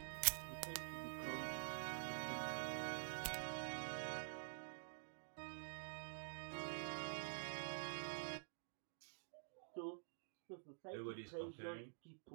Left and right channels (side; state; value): left; silent; digital silence